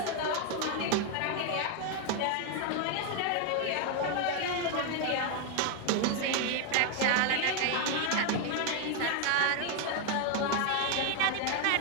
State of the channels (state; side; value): different; both; correlation 0.01